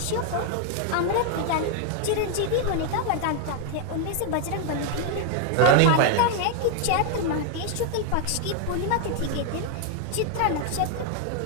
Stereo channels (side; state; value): both; different; correlation 0.00